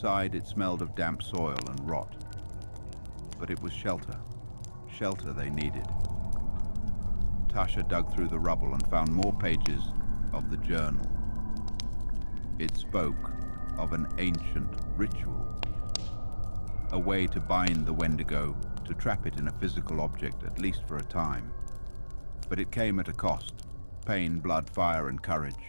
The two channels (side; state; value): both; inverted; correlation -1.00